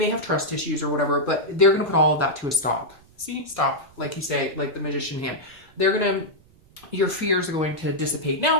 have trust issues or whatever, but they're going to put all of that to a stop. See, stop, like you say, like the Magician hand. Your fears are going to dissipate.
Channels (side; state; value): right; noise; rumble, 28 dB below the sound